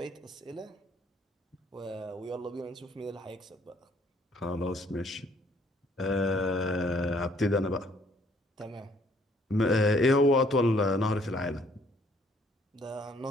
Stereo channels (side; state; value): both; normal; correlation 0.64